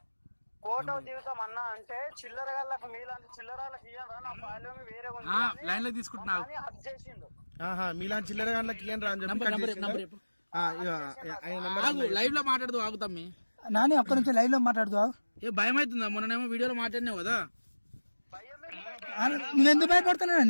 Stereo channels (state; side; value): inverted; both; correlation -1.00